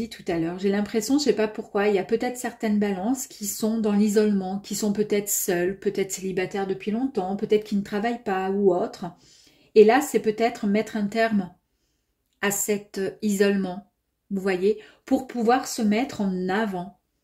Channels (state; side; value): identical; both; correlation 1.00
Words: tout à l'heure. J'ai l'impression, je ne sais pas pourquoi, il y a peut-être certaines balances qui sont dans l'isolement, qui sont peut-être seules, peut-être célibataires depuis longtemps, peut-être qui ne travaillent pas ou autre. Et là, c'est peut-être mettre un terme à cet isolement, vous voyez, pour pouvoir se mettre en avant.